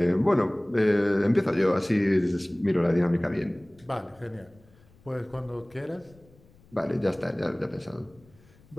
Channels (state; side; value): noise; left; rumble, 28 dB below the sound